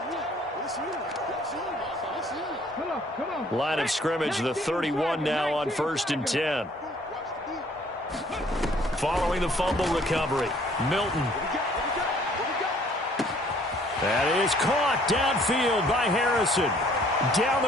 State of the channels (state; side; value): normal; both; correlation 0.59